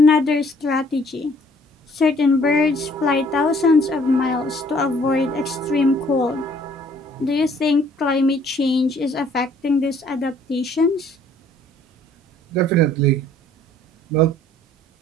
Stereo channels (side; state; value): both; normal; correlation 0.60